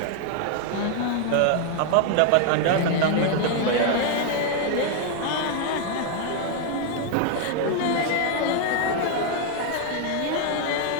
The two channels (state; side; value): different; both; correlation 0.00